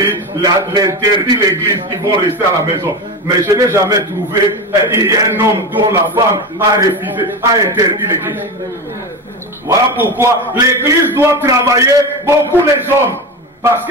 l'interdit l'église, ils vont rester à la maison. Mais je n'ai jamais trouvé un homme dont la femme a refusé, a interdit l'église. Voilà pourquoi l'église doit travailler beaucoup les hommes. Parce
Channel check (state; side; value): normal; both; correlation 0.22